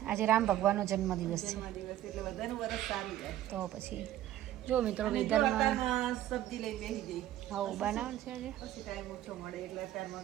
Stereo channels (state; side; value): quieter; left; 13.0 dB